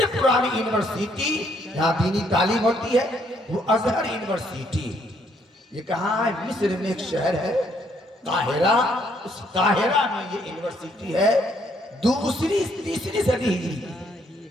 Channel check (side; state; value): both; normal; correlation 0.69